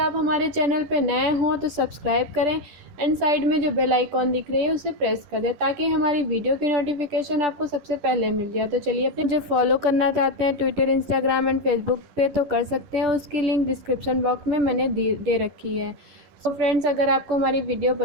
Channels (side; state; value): left; late; 11 ms